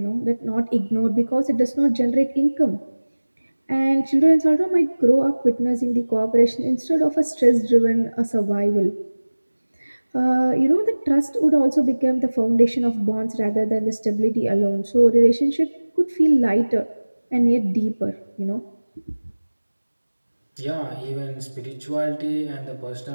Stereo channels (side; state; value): both; inverted; correlation -1.00